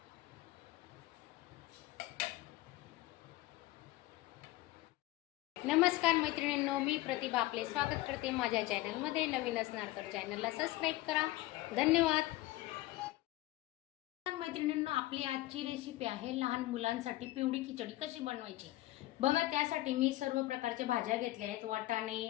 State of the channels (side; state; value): right; quieter; 17.6 dB